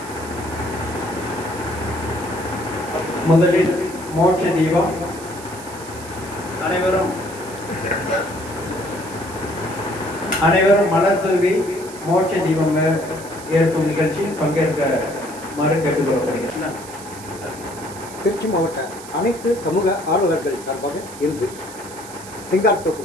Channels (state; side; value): noise; right; hiss, 16 dB below the sound